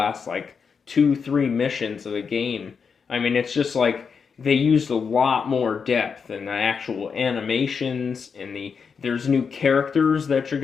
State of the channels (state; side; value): quieter; right; 6.0 dB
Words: like 2-3 missions of the game, I mean, it's just like they used a lot more depth in the actual animations, and there's new characters that you're